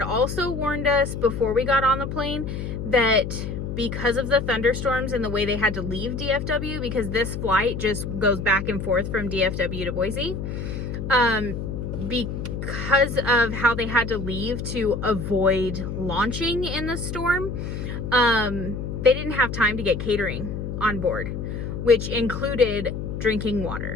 also warned us before we got on the plane that because of the thunderstorms and the way they had to leave DFW, because this flight just goes back and forth from DFW to Boise, because of how they had to leave to avoid launching in the storm, they didn't have time to get catering on board, which included drinking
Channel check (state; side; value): noise; left; hum, 5 dB below the sound